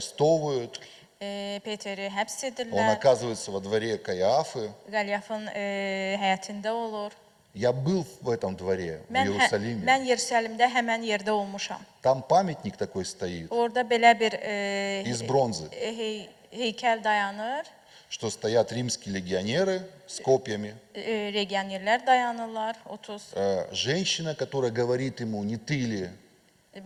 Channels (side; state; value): both; identical; correlation 1.00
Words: Peteri həbs Он edirlər, оказывается во дворе Каиафы. Qalyafın həyətində olur. Я был в этом dворе, в Иерусалиме. Mən Yerusəlimdə həmən yerdə olmuşam. Там памятник такой стоит, Orada belə bir из бронзы. heykəl dayanır. что стоят римские легионеры с копьями. Legionerlər dayanırlar, 30. Женщина, которая говорит ему, не ты ли?